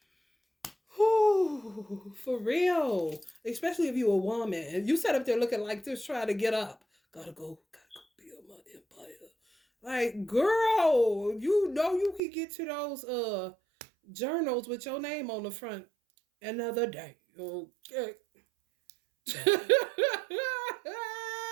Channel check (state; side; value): drops out; left; at 12.2 s